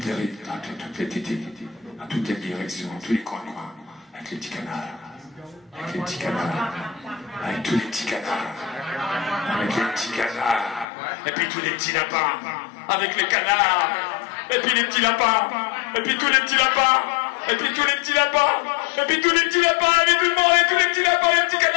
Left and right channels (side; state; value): right; drops out; at 10.9 s